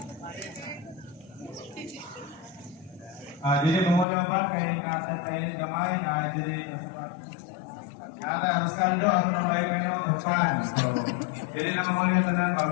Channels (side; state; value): right; drops out; at 4.0 s